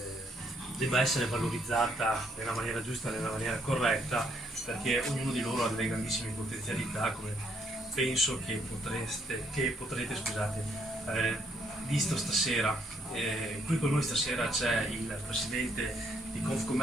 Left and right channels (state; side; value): normal; both; correlation 0.71